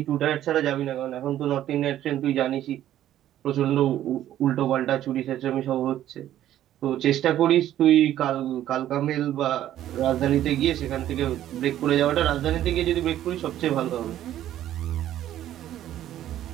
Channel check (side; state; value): left; quieter; 12.3 dB